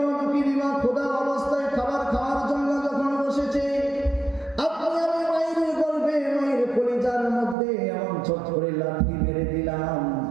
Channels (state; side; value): drops out; left; at 7.6 s